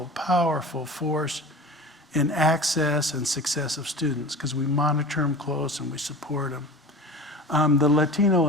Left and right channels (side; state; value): both; normal; correlation 0.35